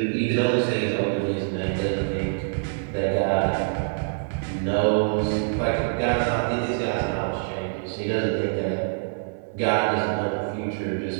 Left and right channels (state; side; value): silent; left; 58 dB below the other